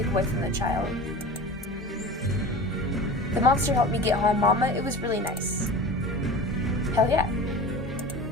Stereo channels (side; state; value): both; normal; correlation 0.35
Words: away from the child. The monster helped me get home, Mama. It was really nice. Hell yeah.